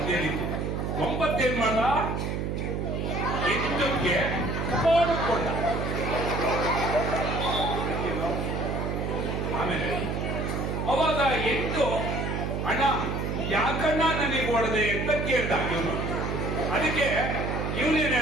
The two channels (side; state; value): right; noise; hum, 2 dB below the sound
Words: ರೀತಿ 9 ಏನ್ ಮಾಡ 8ಕ್ಕೆ ಕೊಂಡ ಆಮೇಲೆ ಅವಾಗ 8 ಅಣ್ಣ ಯಾಕಣ್ಣ ನನಗೆ ಹೊಡೆದೆ ಅಂತ ಕೇಳ್ದ ಇವನು. ಅದಕ್ಕೆ ಇವನೇನ್